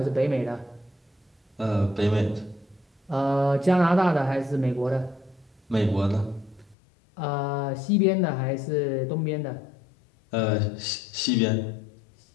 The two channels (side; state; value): right; drops out; at 6.8 s